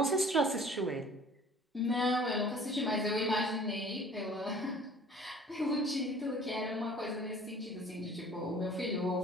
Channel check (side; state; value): both; normal; correlation 0.50